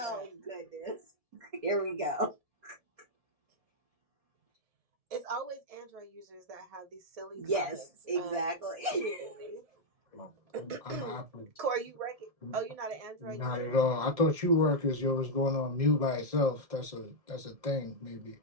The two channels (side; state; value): left; late; 1.7 ms